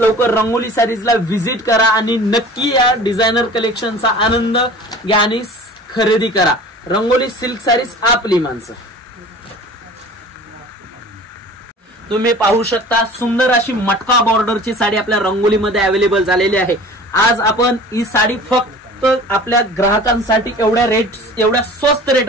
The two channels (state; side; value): normal; both; correlation 0.42